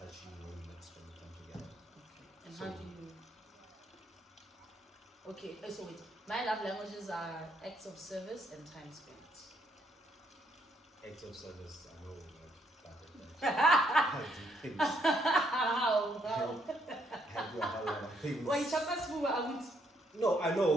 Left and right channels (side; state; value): both; normal; correlation 0.73